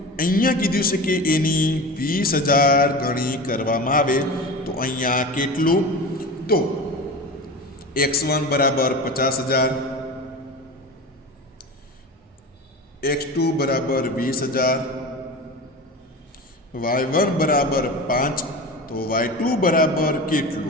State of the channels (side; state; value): both; normal; correlation 0.30